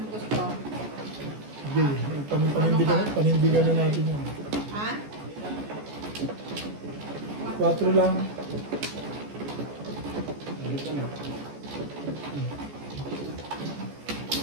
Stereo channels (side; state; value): left; late; 14 ms